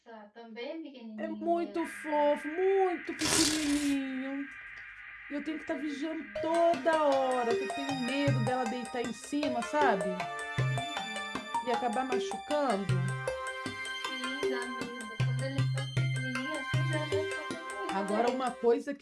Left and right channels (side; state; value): both; identical; correlation 1.00